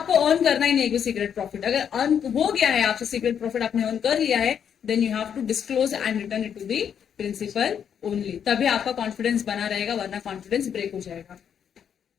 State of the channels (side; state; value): right; quieter; 8.2 dB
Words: अर्न करना ही नहीं है सीक्रेट प्रॉफिट, अगर earn हो गया है आपसे सीक्रेट प्रॉफिट आपने अर्न कर लिया है, then you have to disclose and return it to the principal only, तभी आपका कॉन्फिडेंस बना रहेगा, वरना कॉन्फिडेंस ब्रेक हो जाएगा।